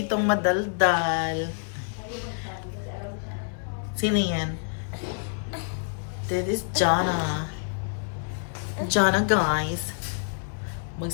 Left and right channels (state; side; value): silent; right; 60 dB below the other